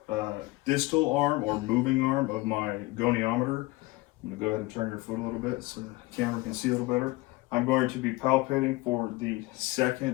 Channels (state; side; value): quieter; right; 21.0 dB